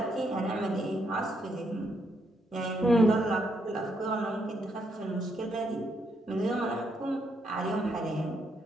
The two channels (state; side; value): normal; both; correlation 0.76